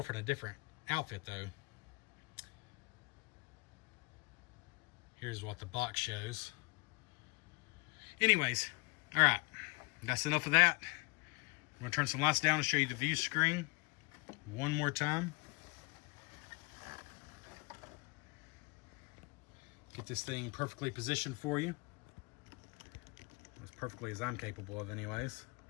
in a different outfit, though. Here's what the box shows. Anyways, all right. That's enough of that. I'm going to turn some lights down and show you the view screen one more time. Get this thing perfectly positioned for you. As perfectly as I'm capable of, anyways.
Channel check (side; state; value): right; quieter; 27.2 dB